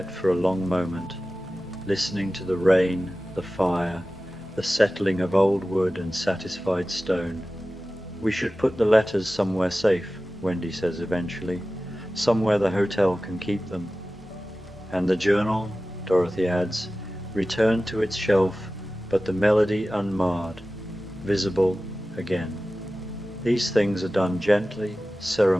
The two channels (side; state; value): both; normal; correlation 0.95